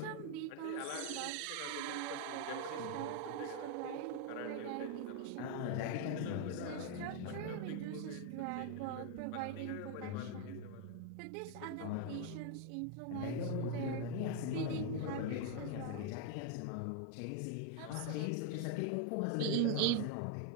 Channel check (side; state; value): both; different; correlation 0.01